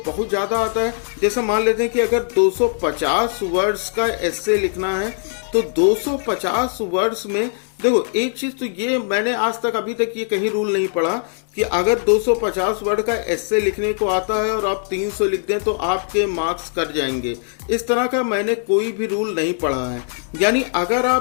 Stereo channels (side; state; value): right; silent; digital silence